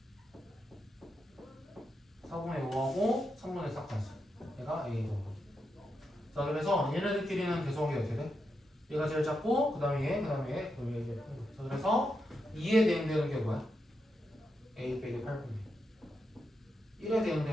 4분의 5하고 3분의 4까지 얘가 A 더하기. 자, 그래서 얘네들끼리는 계속이 어떻게 돼? 얘가 제일 작고 그 다음에 얘, 그 다음에 얘, 그 다음에 얘. 자, 그래서 2에 대응되는 게 뭐야? A 빼기 8분의 1. 1에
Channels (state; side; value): normal; both; correlation 0.85